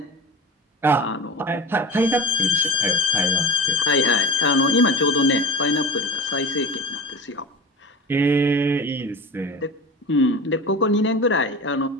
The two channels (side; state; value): both; normal; correlation 0.33